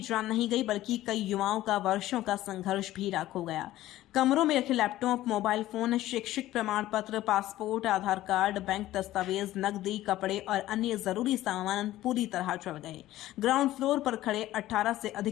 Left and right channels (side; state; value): right; quieter; 15.0 dB